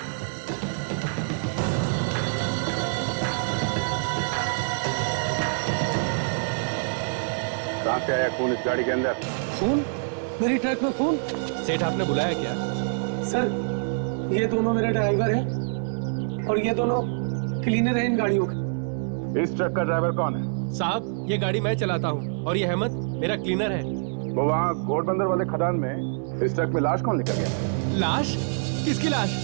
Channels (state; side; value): silent; left; digital silence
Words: कहां से आया खून इस गाड़ी के अंदर? खून? मेरी ट्रक में खून? सेठ आपने बुलाया क्या? सर, ये दोनों मेरे ड्राइवर हैं और ये दोनों क्लीनर हैं इन गाड़ियों के। इस ट्रक का ड्राइवर कौन है? साहब, ये गाड़ी मैं चलाता हूँ और ये अहमद मेरा क्लीनर है। वो वहाँ घोड़बंदर वाले खदान में इस ट्रक में लाश कौन लेकर गया? लाश? किसकी लाश?